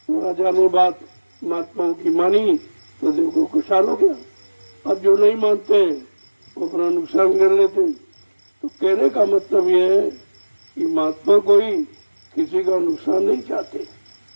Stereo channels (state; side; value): inverted; both; correlation -1.00